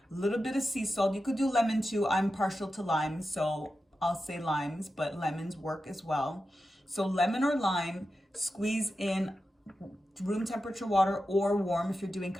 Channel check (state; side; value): normal; both; correlation 0.91